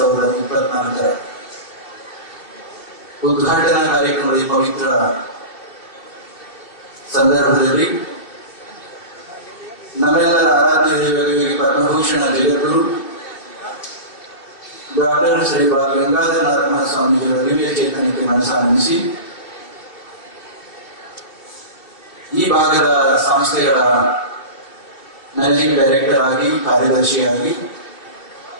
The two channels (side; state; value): right; late; 2.8 ms